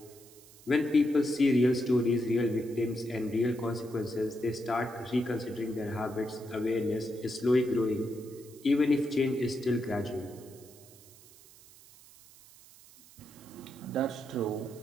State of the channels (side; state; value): right; noise; hiss, 23 dB below the sound